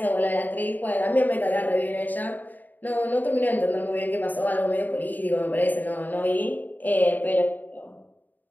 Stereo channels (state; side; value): late; right; 0.085 ms